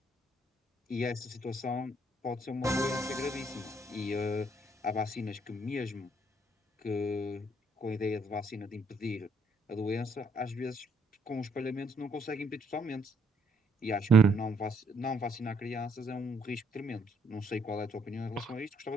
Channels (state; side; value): normal; both; correlation 0.69